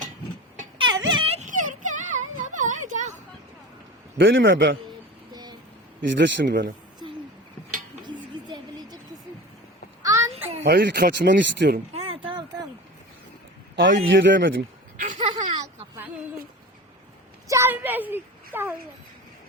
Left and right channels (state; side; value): normal; both; correlation 0.33